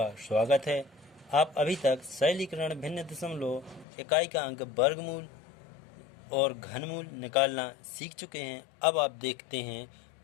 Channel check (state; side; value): drops out; right; at 3.9 s